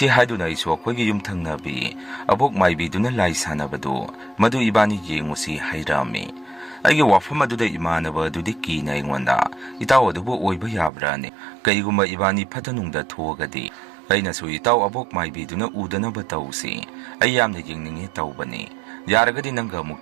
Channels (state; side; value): drops out; left; at 10.9 s